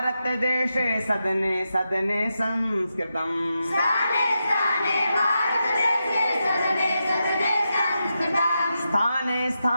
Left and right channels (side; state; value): both; inverted; correlation -0.87